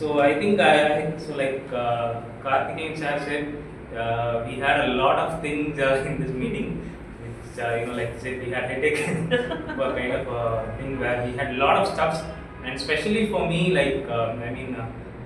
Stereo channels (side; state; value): both; identical; correlation 1.00